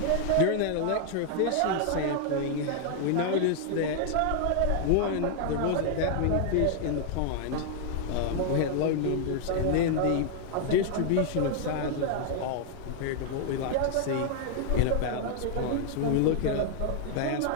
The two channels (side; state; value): both; different; correlation 0.00